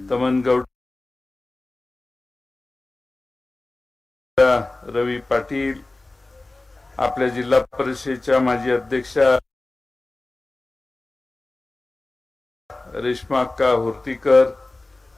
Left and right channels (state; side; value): quieter; right; 3.0 dB